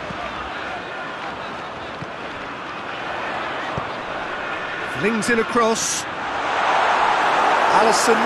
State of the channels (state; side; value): identical; both; correlation 1.00